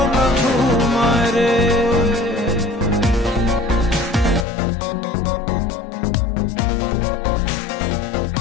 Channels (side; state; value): right; drops out; at 4.5 s